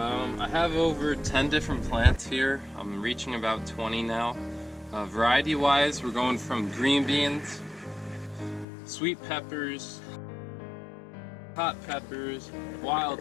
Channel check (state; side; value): drops out; right; at 8.7 s